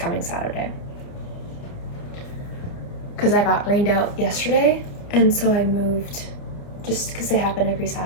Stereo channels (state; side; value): late; right; 29 ms